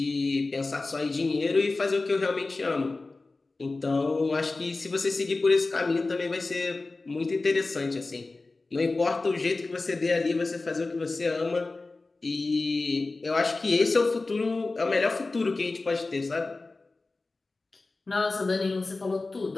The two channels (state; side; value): quieter; right; 3.5 dB